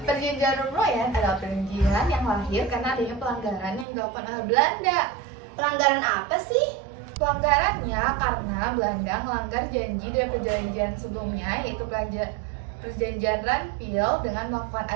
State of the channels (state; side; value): drops out; left; at 3.9 s